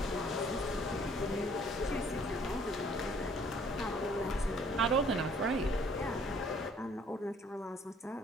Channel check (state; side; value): normal; both; correlation 0.59